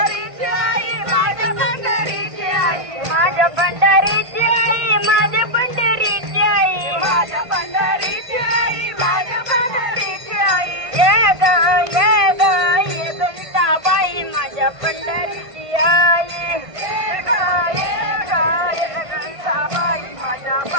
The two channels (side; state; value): left; late; 1.5 ms